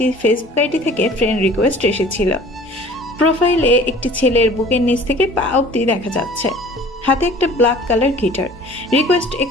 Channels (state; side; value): normal; both; correlation 0.47